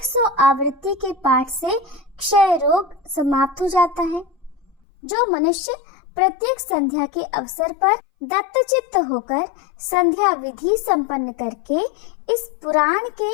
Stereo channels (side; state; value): right; drops out; at 4.8 s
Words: आवृत्ति के पाठ से क्षय रोग समाप्त हो जाता है। जो मनुष्य प्रत्येक संध्या के अवसर पर दत्तचित्त होकर संध्या विधि संपन्न करके इस पुराण के